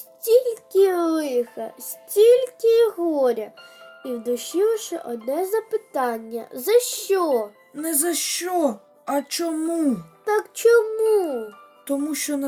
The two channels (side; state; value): both; identical; correlation 1.00